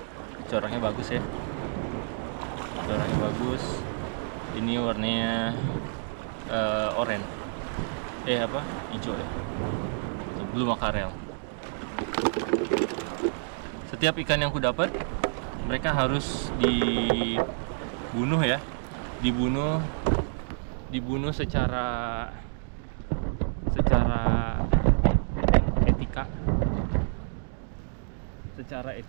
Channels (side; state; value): left; silent; digital silence